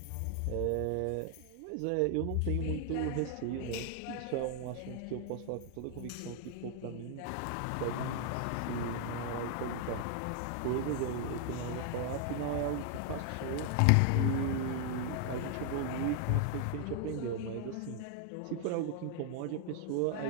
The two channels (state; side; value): different; both; correlation 0.00